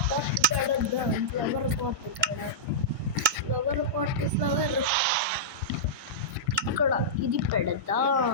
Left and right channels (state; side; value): normal; both; correlation -0.14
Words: ఫ్లవర్ ఇక్కడ ఇది పెడతా